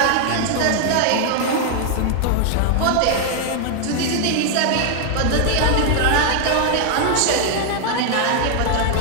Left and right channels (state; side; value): different; both; correlation 0.00